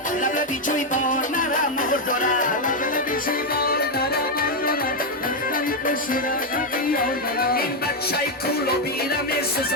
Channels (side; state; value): both; normal; correlation 0.03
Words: لبلبی چوی باد مرا مور داره این بچه کولو بیرم